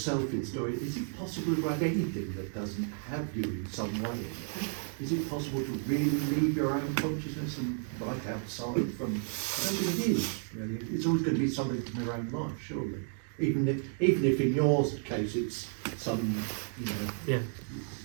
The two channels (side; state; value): left; silent; 56 dB below the other